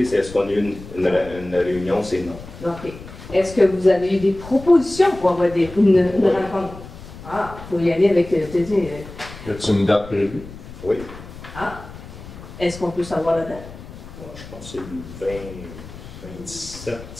c'est est-ce qu'on a eu une réunion? C'est non. OK. Est-ce que vous avez eu des propositions pour avoir une rencontre? Ah, il faut y aller avec... Y a-t-il une date prévue? Oui. Ah. Est-ce qu'on peut savoir la date? Je pense que c'est le 27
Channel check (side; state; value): left; noise; rumble, 15 dB below the sound